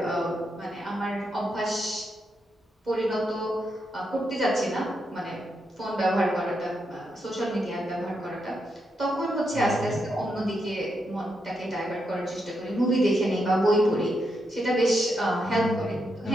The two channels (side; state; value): both; normal; correlation 0.82